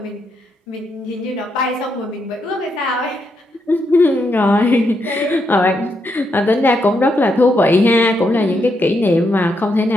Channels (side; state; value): both; normal; correlation 0.80